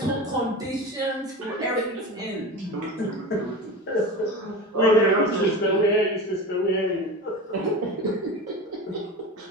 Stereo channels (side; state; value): both; normal; correlation 0.29